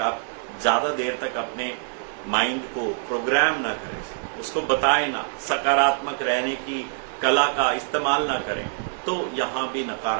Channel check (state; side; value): silent; left; 62 dB below the other